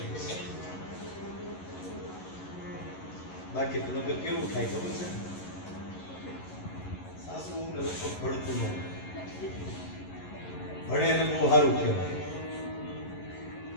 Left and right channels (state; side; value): late; right; 11 ms